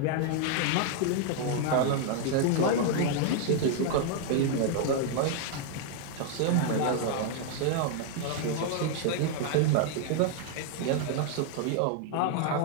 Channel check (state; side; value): different; both; correlation 0.00